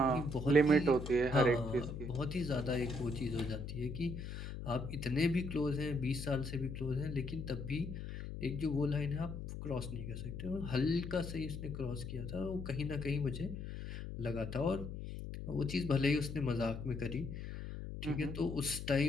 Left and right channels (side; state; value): left; noise; hum, 7 dB below the sound